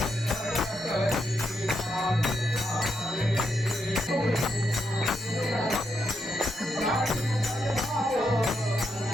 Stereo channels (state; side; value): normal; both; correlation 0.81